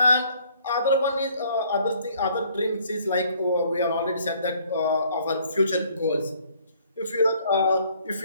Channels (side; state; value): both; inverted; correlation -0.61